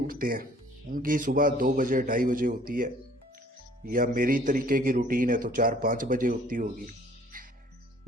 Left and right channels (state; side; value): normal; both; correlation 0.56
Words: हैं। उनकी सुबह 2 बजे 2:30 बजे होती है, या मेरी तरीके की रूटीन है तो 4-5 बजे होती होगी।